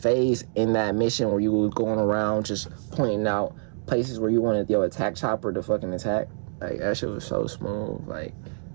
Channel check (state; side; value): silent; left; digital silence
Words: in that mission where you were going around just pointing out places where you wanted your attack chopper to fucking attack. Like, that shit was so smooth. Like,